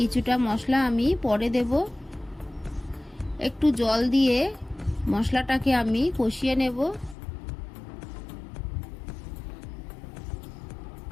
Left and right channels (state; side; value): drops out; right; at 7.2 s